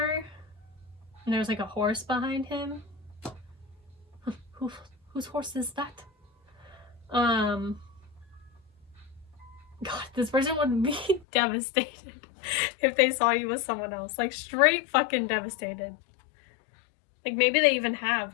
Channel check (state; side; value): drops out; right; at 11.2 s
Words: and there's like a horse behind him. Whose horse is that? God, this person would be devastated if they saw you with someone else. Like straight fucking devastated. Like maybe they even